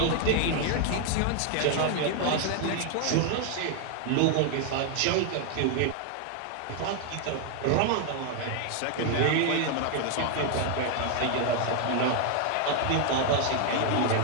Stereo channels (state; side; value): different; both; correlation 0.00